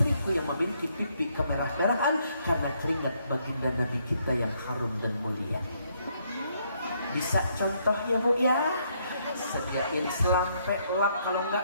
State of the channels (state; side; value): inverted; both; correlation -0.72